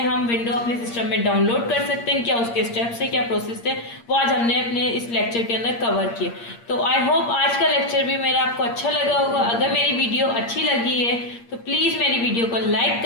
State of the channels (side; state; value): right; late; 8.6 ms